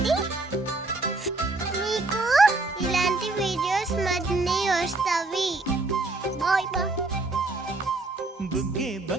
మీకు ఇలాంటి వీడియోస్ మరిన్ని వస్తాయి. Bye bye. బుగ్గే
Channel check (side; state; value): left; quieter; 3.1 dB